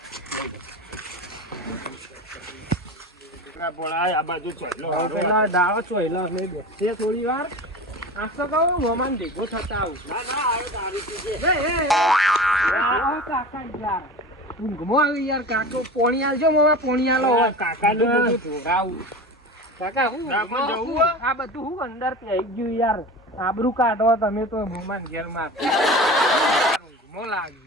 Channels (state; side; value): normal; both; correlation 0.33